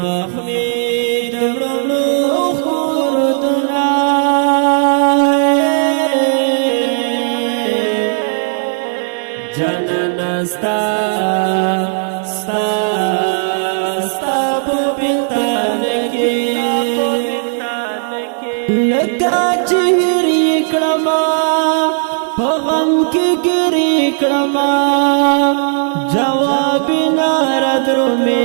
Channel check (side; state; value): left; silent; digital silence